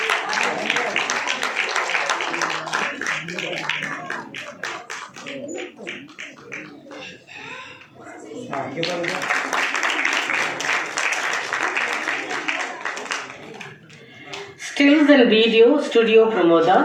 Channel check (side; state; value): both; identical; correlation 1.00